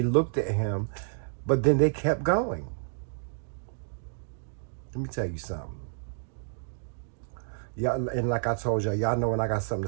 looked at him, but then they kept going. Let me tell you something. Y'all, and like I told y'all know when I got something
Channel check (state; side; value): silent; left; digital silence